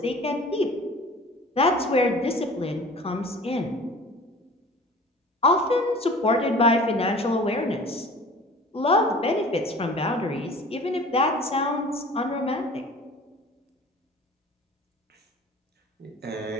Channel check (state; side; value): normal; both; correlation 0.44